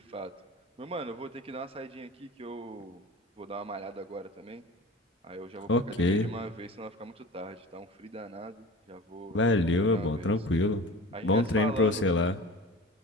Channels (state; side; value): normal; both; correlation 0.36